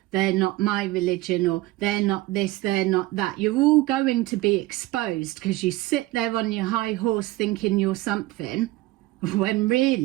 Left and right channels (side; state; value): left; quieter; 18.3 dB